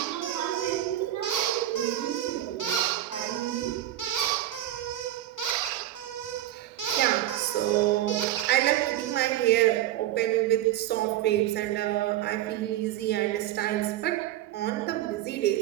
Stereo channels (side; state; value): left; quieter; 13.3 dB